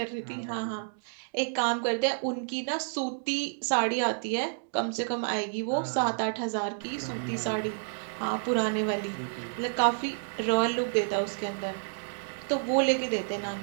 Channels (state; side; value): silent; left; digital silence